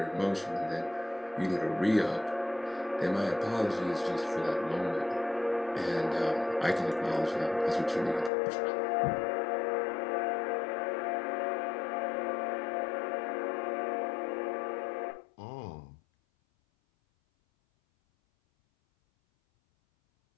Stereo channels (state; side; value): drops out; right; at 8.3 s